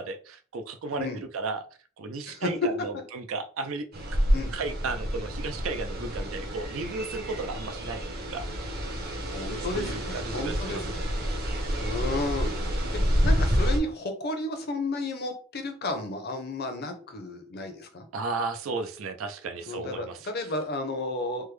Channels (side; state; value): both; normal; correlation 0.59